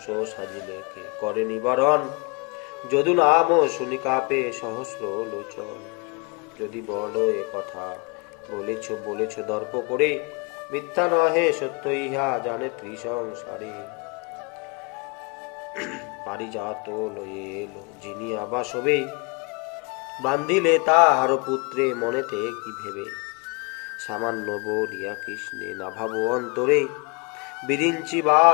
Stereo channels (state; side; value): quieter; right; 30.8 dB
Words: সাজিলে কে করে নিবারণ, যদু নাম শুনি কাপে সহস্র লোচন। যদি বলো এ কথা বলেছ দর্প করে, মিথ্যা নহে সত্য ইহা জানে ত্রিসংসারে। পারিজাত লয়ে এলো যিনি আবাসবে, বান্ধিলে তাহার পুত্রে মনেতে কি ভেবে। সামান্য বলিয়া কৃষ্ণে না ভাবো অন্তরে, বিরিঞ্চি